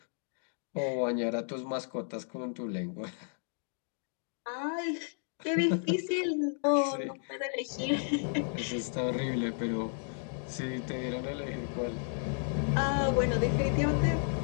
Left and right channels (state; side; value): silent; right; 56 dB below the other